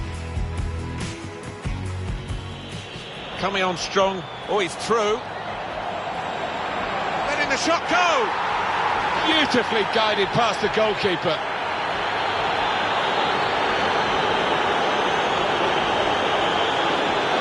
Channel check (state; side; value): identical; both; correlation 1.00